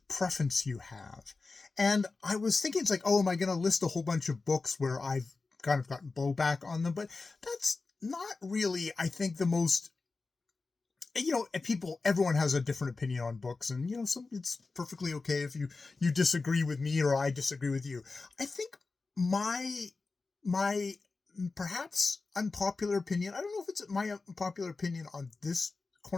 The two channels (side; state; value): right; quieter; 3.9 dB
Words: preference you have? And I was thinking, it's like, oh, am I going to list a whole bunch of books where I've kind of gotten blowback on them? But that's not really, I think, the most, everyone has a different opinion on books, and, it's perfectly okay if you disagree with me or I disagree with you. I think my perhaps unpopular opinion, I don't know if it's my unpopular opinion on this